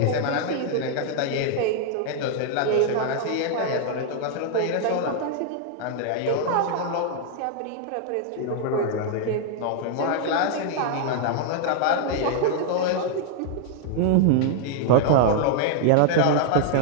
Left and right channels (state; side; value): different; both; correlation 0.00